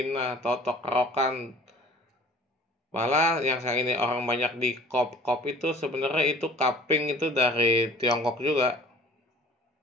totok, kerokan. Malah yang saya ini orang banyak di kop itu sebenarnya itu cupping itu dari Tiongkok juga.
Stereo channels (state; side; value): normal; both; correlation 0.49